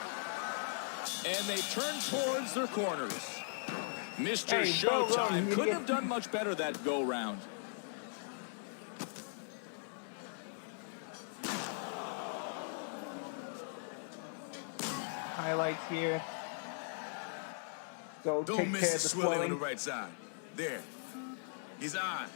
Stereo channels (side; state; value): right; silent; digital silence